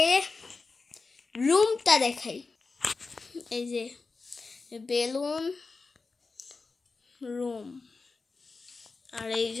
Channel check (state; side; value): quieter; right; 4.1 dB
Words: রুমটা দেখাই। এই যে বেলুন, রুম, আর এই